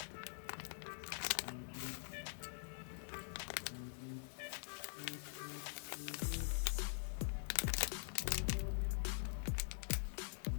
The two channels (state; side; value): silent; right; digital silence